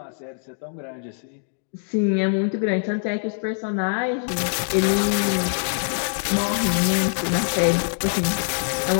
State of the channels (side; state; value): right; silent; digital silence